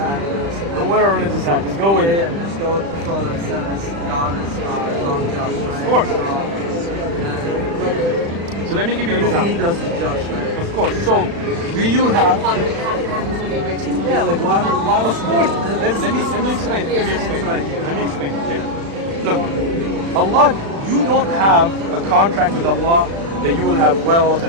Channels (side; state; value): left; late; 36 ms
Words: Don't wear a religious act, just go with it. Yeah, just go with the flow that says God is unjust, right? Of course. So let me give you an example. He does is just, right? Of course. So, do you have... Yeah, like why Of course. Let me explain it. Let me explain it. Yeah. Look, Allah, you don't have a contract with Allah that you will have wealth